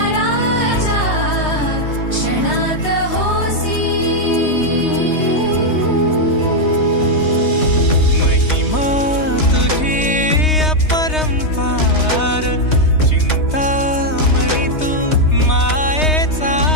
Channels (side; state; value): right; late; 3.2 ms